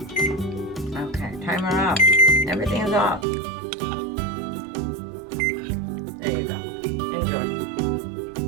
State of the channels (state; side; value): drops out; left; at 3.2 s